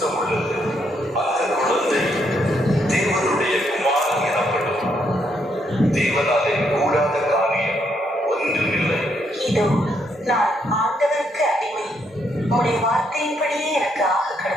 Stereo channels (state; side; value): normal; both; correlation 0.75